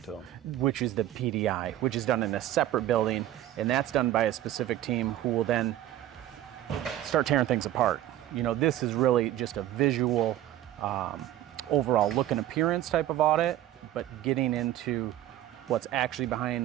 them. Which is the PDI, which is done in a separate building, and that's done by a specific team who will then start tearing things apart. This is really just a visual, overall look and appearance type of audit, but getting into what's actually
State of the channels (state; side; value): quieter; left; 13.2 dB